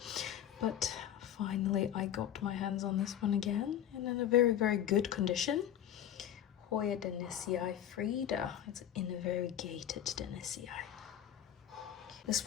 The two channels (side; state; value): right; quieter; 10.6 dB